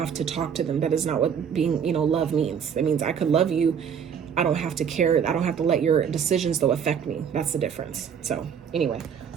to talk to them. That is not what being, you know, love means. That means I could love you, I don't have to care, I don't have to let your decisions though affect me. That's the difference. So anyway,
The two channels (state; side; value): quieter; left; 7.5 dB